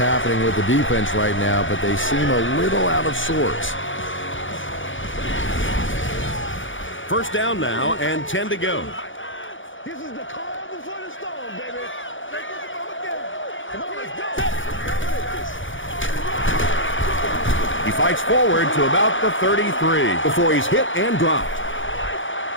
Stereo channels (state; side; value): late; right; 0.56 ms